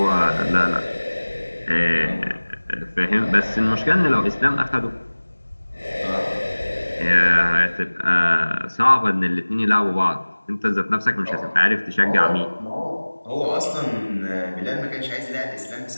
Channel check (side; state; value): both; inverted; correlation -1.00